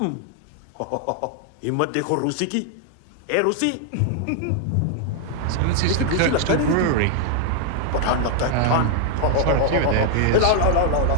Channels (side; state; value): both; different; correlation 0.00